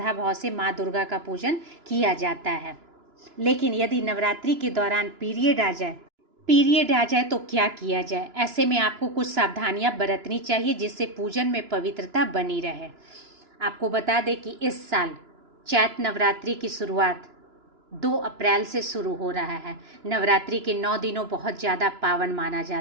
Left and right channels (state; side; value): late; left; 2.9 ms